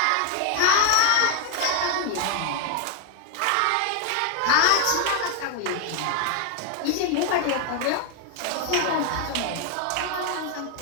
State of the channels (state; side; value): different; both; correlation 0.00